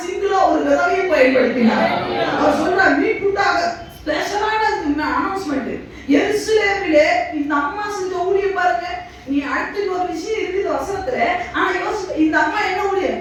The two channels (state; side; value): identical; both; correlation 1.00